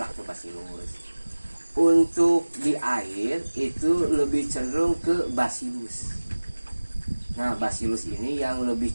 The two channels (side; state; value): both; inverted; correlation -1.00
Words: lactobacillus. Untuk di air itu lebih cenderung ke bacillus. Nah, bacillus ini yang lebih